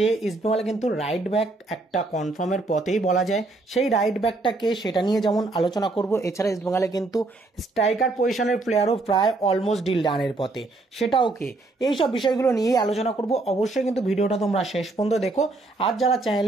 ইস্টবেঙ্গলে কিন্তু রাইট ব্যাক একটা কনফার্মের পথেই বলা যায়। সেই রাইট ব্যাকটাকে সেটা নিয়ে যেমন আলোচনা করব, এছাড়া ইস্টবেঙ্গলে কিন্তু স্ট্রাইকার পজিশনের প্লেয়ারও প্রায় অলমোস্ট ডিল ডানের পথে, সেটাও কে। এইসব বিষয়গুলো নিয়েই আলোচনা করব। অবশ্যই কিন্তু ভিডিওটা তোমরা শেষ পর্যন্ত দেখো। আর যারা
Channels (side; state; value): left; quieter; 3.2 dB